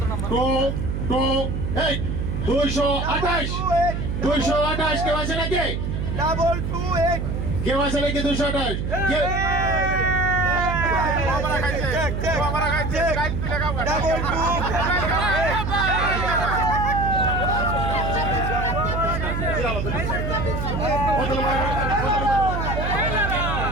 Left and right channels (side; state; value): right; noise; hum, 2 dB below the sound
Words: 228 কেউ আছে নাকি? কেউ আছে নাকি? 228